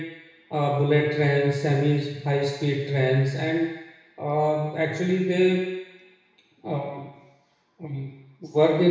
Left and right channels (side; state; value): both; identical; correlation 1.00